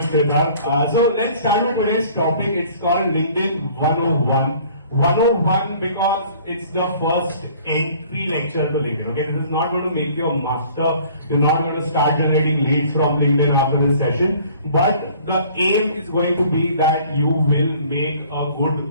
Siddharth. So let's start with today's topic. It's called LinkedIn 101. 101 because it's the first entry lecture to LinkedIn. Okay, this is not going to make you a master. You're not going to start generating leads from LinkedIn after this session. But the aim is going to be that you will make a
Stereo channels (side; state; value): both; inverted; correlation -0.53